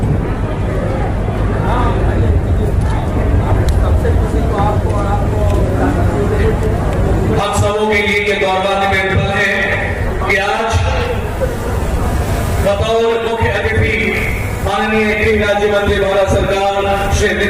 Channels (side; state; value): both; identical; correlation 1.00